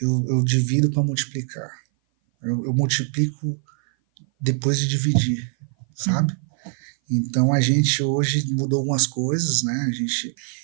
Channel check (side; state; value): left; silent; 57 dB below the other